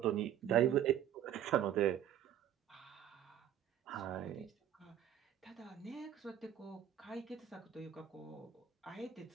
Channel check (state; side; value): quieter; left; 10.5 dB